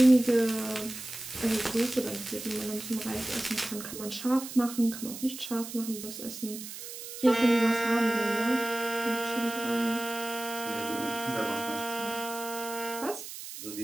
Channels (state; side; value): noise; right; hiss, 10 dB below the sound